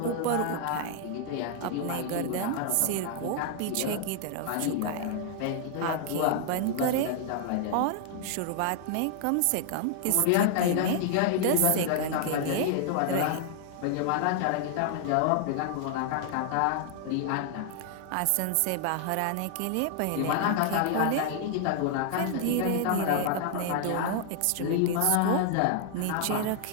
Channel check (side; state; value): both; different; correlation 0.00